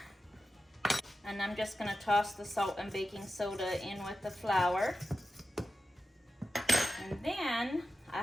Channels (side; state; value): both; normal; correlation 0.92